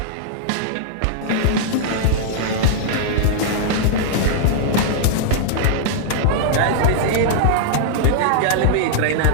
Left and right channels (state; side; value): different; both; correlation -0.01